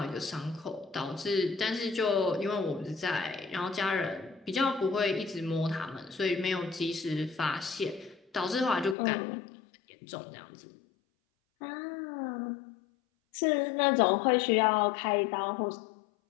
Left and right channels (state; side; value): drops out; right; at 9.0 s